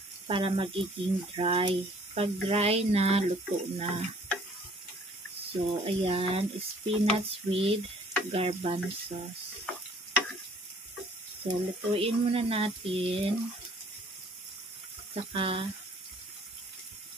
para magiging dry. Pag dry na, luto na. So, ayan, spinach with garbanzos. So, lutuin muna natin. Saka,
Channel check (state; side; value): normal; both; correlation 0.57